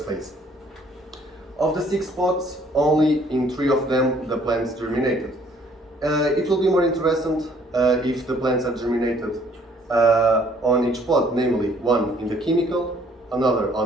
phase. Of the 6 pots, only in 3 of them the plants germinated. It will be more interesting if the plants are germinated on each pot, namely one in the chemical, another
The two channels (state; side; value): normal; both; correlation 0.61